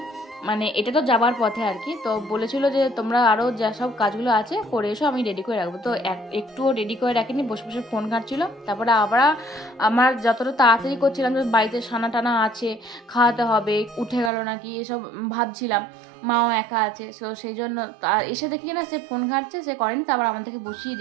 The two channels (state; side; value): drops out; left; at 14.3 s